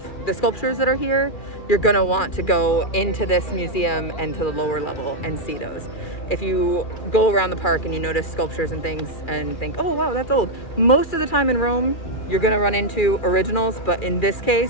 the sculptures that are here, you're gonna want to go into this museum and to the lower level and see those. If you go around the park and you notice sculptures and things and think, oh wow, that's old. Most of the time in Rome, you're gonna run into originals, but in this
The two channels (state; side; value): late; right; 2.4 ms